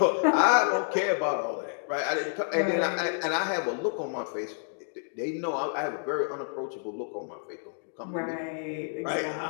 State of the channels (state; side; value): silent; right; digital silence